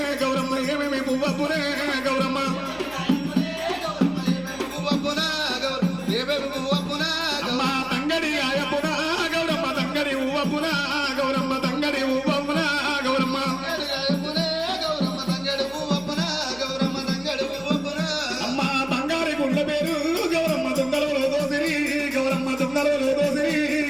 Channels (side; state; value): left; noise; hum, 20 dB below the sound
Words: గౌరమ్మ ఏమేమి పువ్వపురే. గౌరమ్మ అమ్మ తంగడి ఆయపున గౌరమ్మ తంగడి ఊవపున. గౌరమ్మ తంగడి ఊవపున. గౌరమ్మ అమ్మ బంగారి గుండ్ల పేరు గౌరమ్మ దొంగలలో దోసిరి. గౌరమ్మ దొంగలలో దోసిరి.